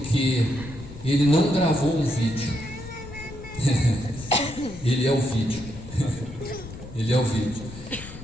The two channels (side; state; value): left; noise; rumble, 14 dB below the sound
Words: ele não gravou um vídeo. Ele é o vídeo. Ele é o vídeo.